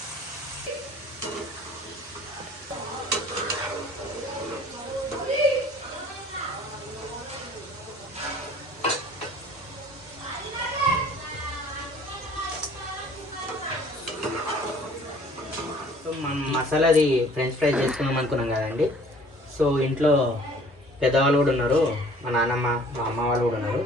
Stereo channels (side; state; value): both; normal; correlation 0.52